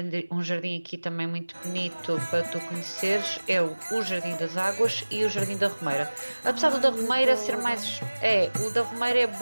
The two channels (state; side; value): inverted; both; correlation -1.00